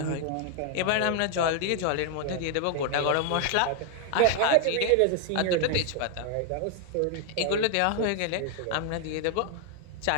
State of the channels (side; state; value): both; different; correlation 0.00